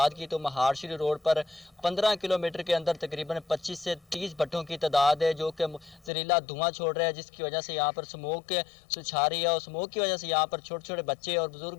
کی تو مہار شری روڈ پر 15 کلومیٹر کے اندر تقریباً 25 سے 30 بھٹھوں کی تعداد ہے جو کہ زہریلا دھواں چھوڑ رہا ہے، جس کی وجہ سے یہاں پر اسموک چھا رہی ہے، اور اسموک کی وجہ سے یہاں پر چھوٹے چھوٹے بچے اور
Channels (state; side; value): drops out; right; at 6.1 s